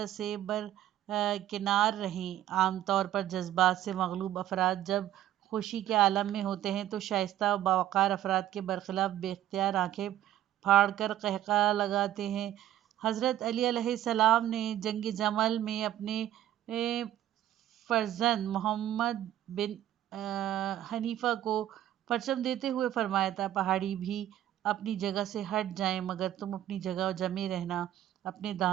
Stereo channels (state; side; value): quieter; left; 12.5 dB